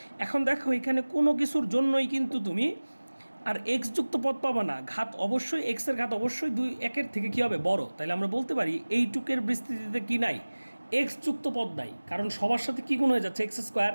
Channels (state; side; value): inverted; both; correlation -1.00